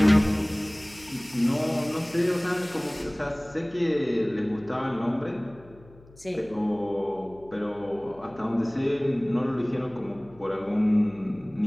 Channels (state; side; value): noise; left; hum, 24 dB below the sound